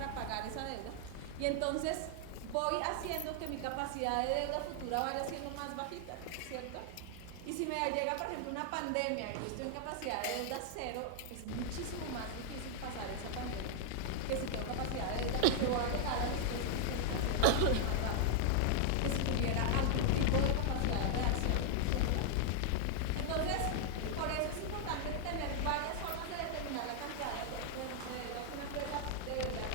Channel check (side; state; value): both; different; correlation 0.00